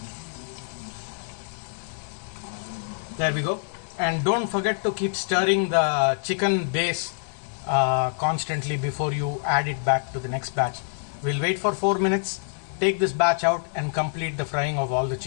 There we go. And don't forget to keep stirring the chicken base constantly before you add it back to the next batch. We'll wait for 4 minutes, take this batch out and complete the frying of all the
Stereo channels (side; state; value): right; silent; digital silence